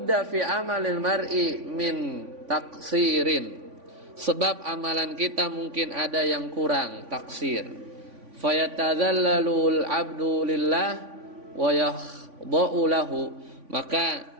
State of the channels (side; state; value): left; late; 3.5 ms